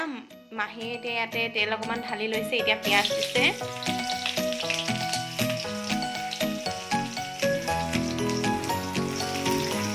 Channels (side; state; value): both; identical; correlation 1.00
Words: মাহীয়ে এতিয়া ইয়াতে তেল অকণমান ঢালি লৈছে এতিয়া পিঁয়াজ দিছে